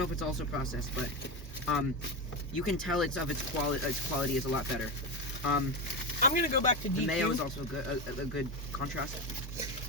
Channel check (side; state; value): both; normal; correlation 0.15